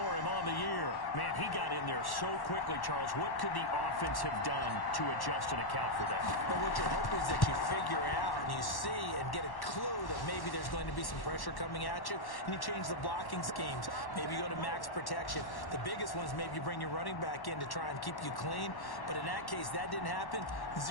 him on the year. Man, he got in there so quickly, Charles. What could the offense have done to adjust and account for that? But what you're hoping is that you figure out and you see and get a clue that maybe there's going to be some pressure coming at you, and you change the blocking schemes. Maybe you go to max protection. The biggest one is maybe you bring your running back in to try and keep you clean. But in that case, that didn't happen.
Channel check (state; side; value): late; right; 1.1 ms